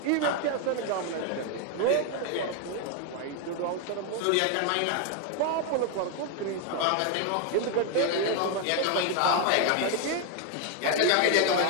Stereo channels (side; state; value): both; different; correlation 0.01